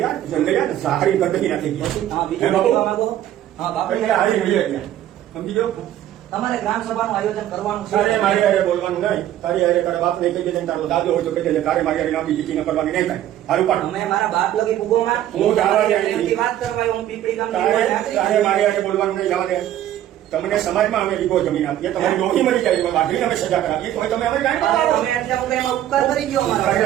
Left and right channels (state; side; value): quieter; left; 12.2 dB